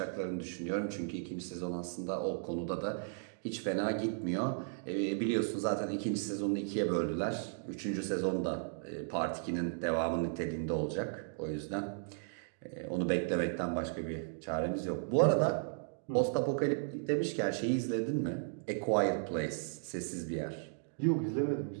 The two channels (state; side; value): silent; left; digital silence